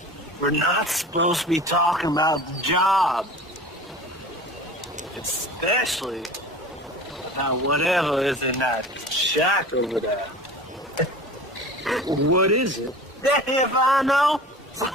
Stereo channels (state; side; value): normal; both; correlation 0.38